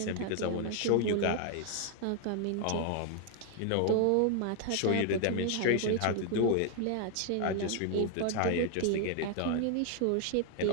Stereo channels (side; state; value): both; different; correlation 0.00